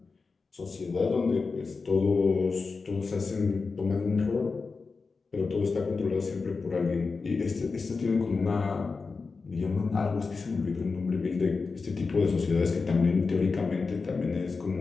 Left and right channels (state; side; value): quieter; right; 4.4 dB